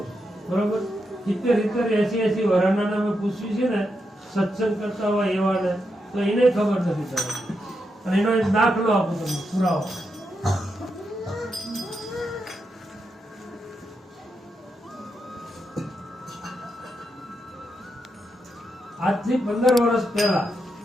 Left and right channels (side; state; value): both; normal; correlation 0.84